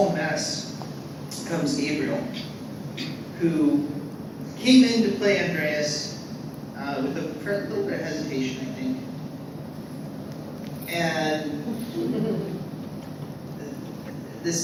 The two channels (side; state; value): both; identical; correlation 1.00